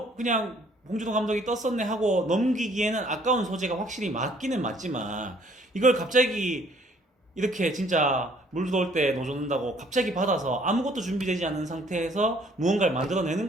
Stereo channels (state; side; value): normal; both; correlation 0.60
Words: 봉준호 감독이 떴었네 하고 넘기기에는 아까운 소재가 확실히 맞기는 맞지만 이걸 갑자기 이렇게 진짜 물 들어올 때 노젓는다고 갑자기 받아서 아무것도 준비되지 않은 상태에서 무언가를 만들어내는